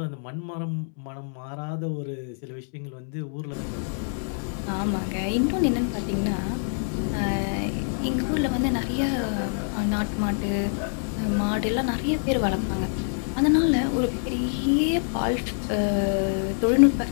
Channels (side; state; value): right; silent; digital silence